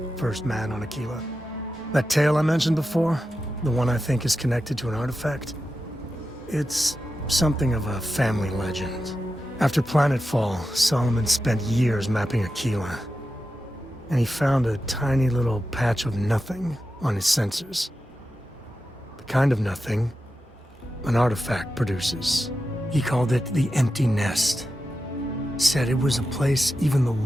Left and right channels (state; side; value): normal; both; correlation 0.91